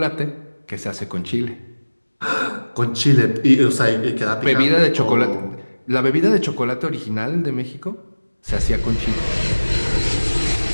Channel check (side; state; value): both; inverted; correlation -1.00